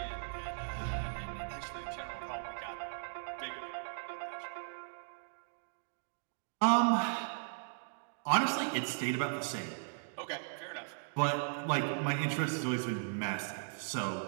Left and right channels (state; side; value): silent; left; digital silence